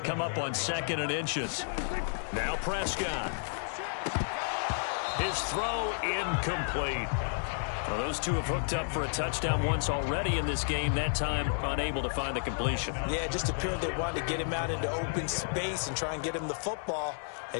up on 2nd and inches. Now Prescott. His throw incomplete. Well, those two have hooked up for a touchdown once already in this game, that time unable to find the completion. Yeah, it just appeared they wanted to get him out into open space and try and get him the football.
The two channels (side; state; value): right; silent; digital silence